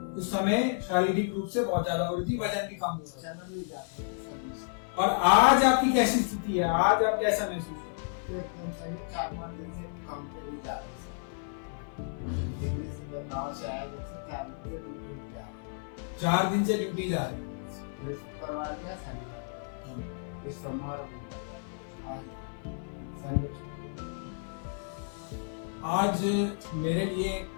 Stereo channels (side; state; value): right; silent; 55 dB below the other